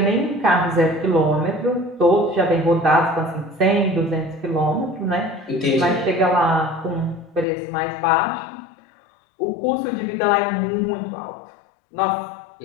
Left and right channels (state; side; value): drops out; right; at 7.5 s